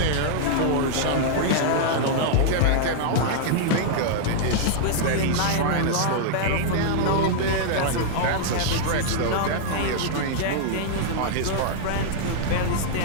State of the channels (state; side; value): different; both; correlation -0.01